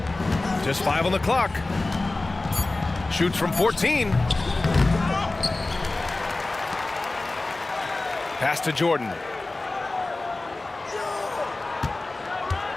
Just 5 on the clock. Shoots from 14. Pass to Jordan.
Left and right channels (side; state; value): right; quieter; 3.1 dB